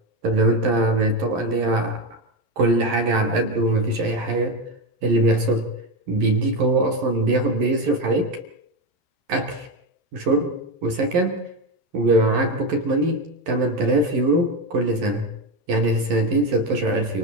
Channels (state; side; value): late; left; 11 ms